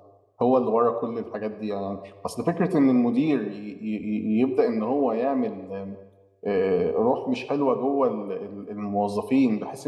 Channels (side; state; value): both; identical; correlation 1.00